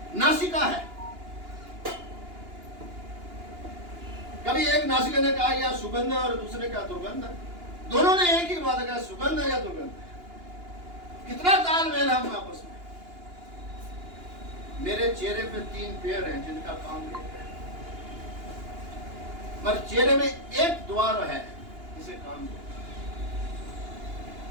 नासिका है। कभी एक नासिका ने कहा यह सुगंध है और दूसरे का दुर्गंध है। दोनों ने एक ही बात कहा, सुगंध है या दुर्गंध है। कितना तालमेल है हम आपस में। मेरे चेहरे पे 3 पैर हैं जिनका काम एक है, मगर चेहरे में एक द्वार है जिसे काम दो।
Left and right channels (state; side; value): late; left; 2.9 ms